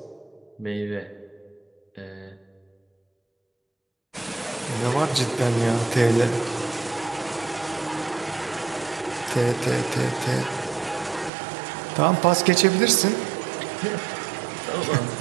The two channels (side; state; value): left; drops out; at 11.3 s